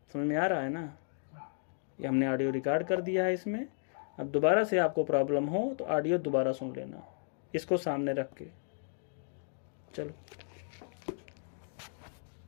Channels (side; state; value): right; silent; digital silence